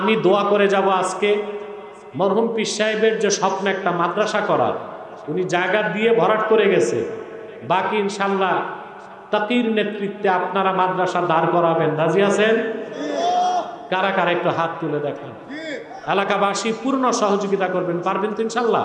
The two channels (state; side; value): identical; both; correlation 1.00